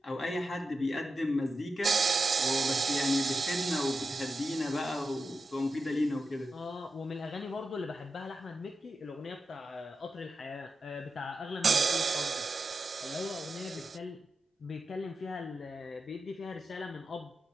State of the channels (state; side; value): normal; both; correlation 0.89